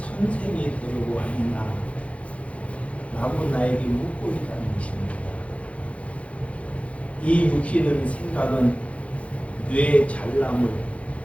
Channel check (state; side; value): late; right; 0.063 ms